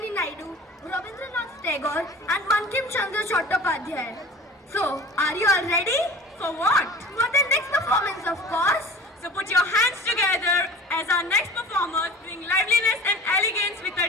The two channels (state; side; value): normal; both; correlation 0.40